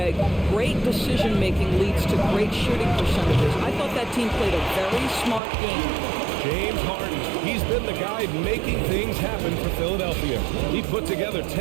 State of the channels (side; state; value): left; drops out; at 5.4 s